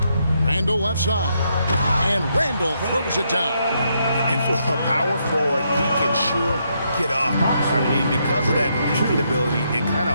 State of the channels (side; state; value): both; inverted; correlation -0.77